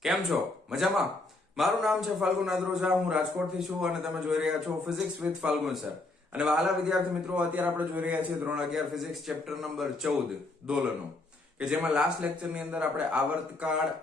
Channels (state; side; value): quieter; right; 3.1 dB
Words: કેમ છો? મજામાં? મારું નામ છે ફાલ્ગુન આદ્રોજા, હું રાજકોટથી છું અને તમે જોઈ રહ્યા છો ફિઝિક્સ વિથ ફાલ્ગુન સર. અને વહાલા વિદ્યાર્થી મિત્રો, અત્યારે આપણે જોઈ રહ્યા છીએ ધોરણ 11 ફિઝિક્સ ચેપ્ટર નંબર 14 દોલનો, કે જેમાં લાસ્ટ લેક્ચરની અંદર આપણે આવર્તકાળ,